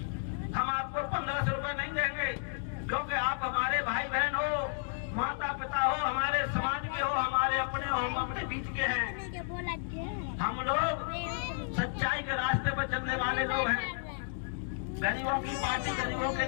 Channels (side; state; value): right; silent; digital silence